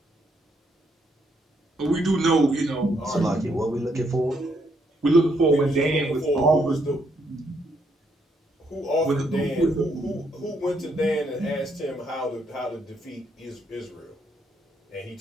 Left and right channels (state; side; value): normal; both; correlation 0.74